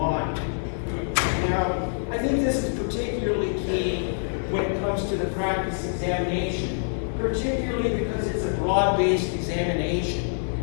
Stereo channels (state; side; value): silent; right; 61 dB below the other